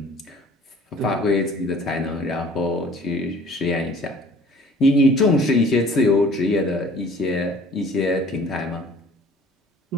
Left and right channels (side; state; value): both; normal; correlation 0.51